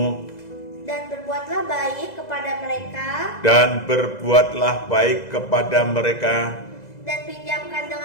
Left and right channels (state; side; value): late; right; 2.0 ms